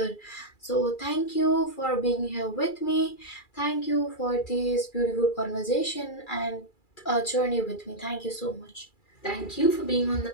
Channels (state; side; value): late; right; 2.3 ms